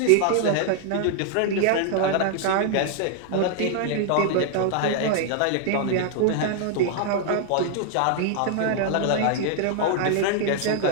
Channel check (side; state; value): both; different; correlation 0.00